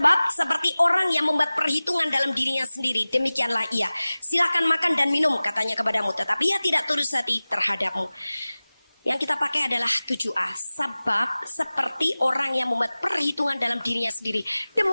seperti orang yang membuat perhitungan dalam dirinya sendiri, demikianlah ia. Silakan makan dan minum, katanya kepadamu, tetapi ia tidak tulus hati terhadapmu. Yang kita pakai adalah 7a. Sebab seperti orang yang membuat perhitungan dalam dirinya sendiri,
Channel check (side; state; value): both; inverted; correlation -0.98